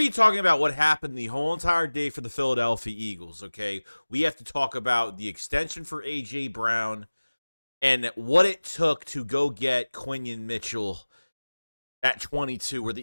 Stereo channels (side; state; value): both; inverted; correlation -1.00